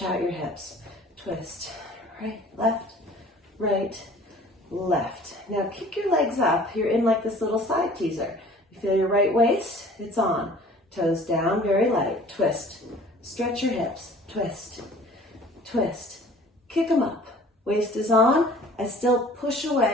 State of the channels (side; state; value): both; normal; correlation 0.49